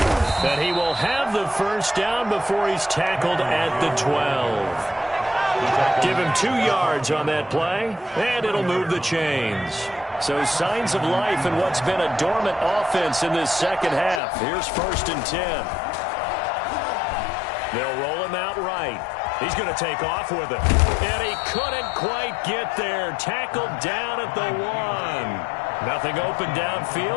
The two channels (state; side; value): drops out; right; at 14.2 s